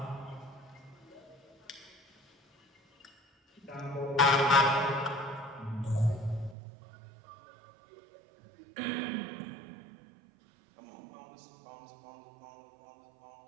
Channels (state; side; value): drops out; left; at 6.6 s